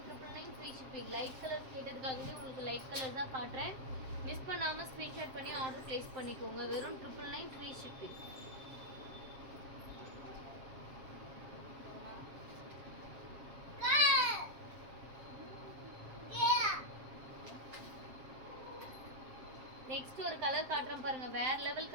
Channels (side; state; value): left; late; 7.6 ms